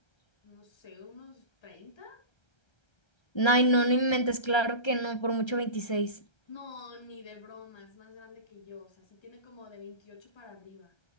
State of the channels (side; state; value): right; late; 1.3 ms